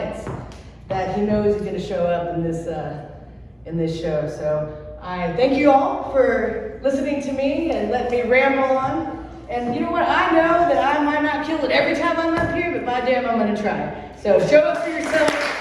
that he knows he's going to show up in this show. So I thank you all for listening to me and letting me ramble on. And you know what? I know that I might not kill it every time I'm up here, but by damn, I'm going to try. So show up for yourself.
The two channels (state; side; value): identical; both; correlation 1.00